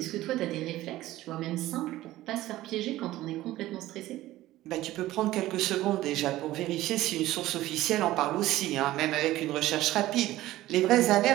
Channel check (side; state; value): left; quieter; 15.9 dB